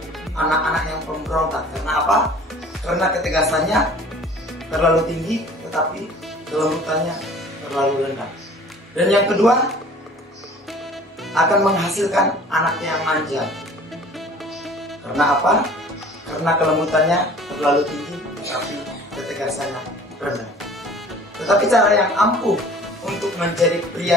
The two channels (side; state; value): both; normal; correlation 0.48